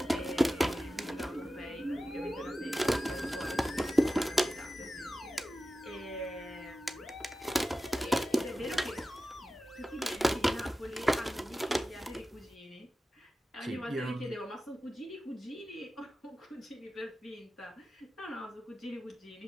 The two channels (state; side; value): normal; both; correlation 0.94